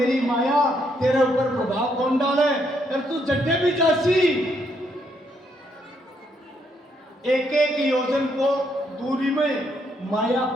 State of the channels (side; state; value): both; normal; correlation 0.74